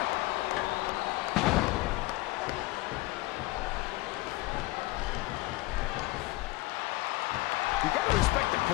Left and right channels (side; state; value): right; quieter; 20.5 dB